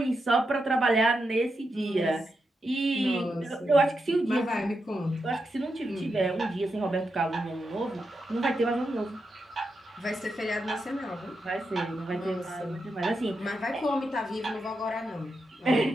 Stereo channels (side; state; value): both; normal; correlation 0.86